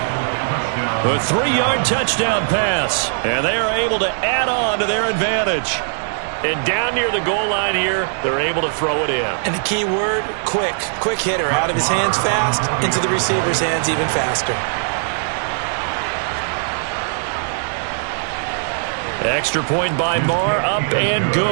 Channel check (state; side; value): silent; left; digital silence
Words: A 3-yard touchdown pass, and they are able to add on to their advantage. And down near the goal line here, they're able to throw it in. And the key word, quick. Quick hitter. Out of his hands fast, into the receiver's hands even faster. Extra point by Marr, up and